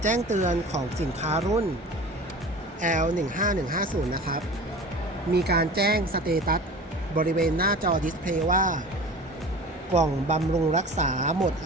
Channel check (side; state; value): both; normal; correlation 0.38